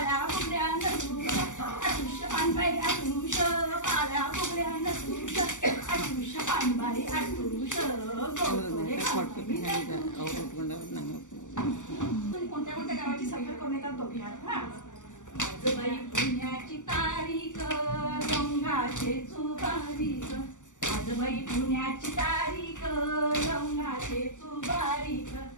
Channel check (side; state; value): right; late; 0.86 ms